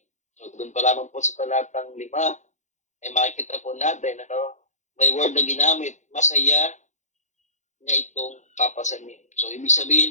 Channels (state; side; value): late; right; 0.35 ms